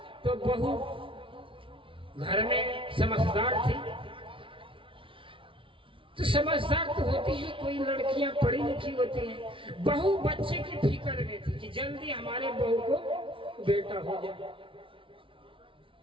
तो बहू घर में समझदार थी, तो समझदार तो होती है, कोई लड़कियां पढ़ी लिखी होती हैं। बहू बच्चे की फिक्र में थी कि जल्दी हमारे बहू को बेटा हो जाए।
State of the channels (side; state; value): left; late; 0.25 ms